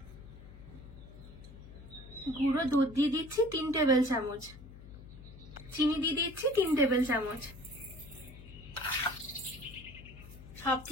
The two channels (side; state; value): left; noise; hum, 17 dB below the sound